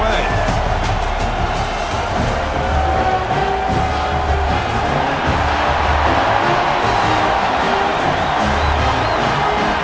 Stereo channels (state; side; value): identical; both; correlation 1.00